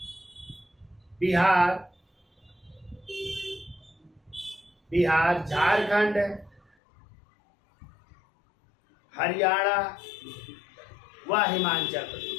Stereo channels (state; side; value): drops out; right; at 6.6 s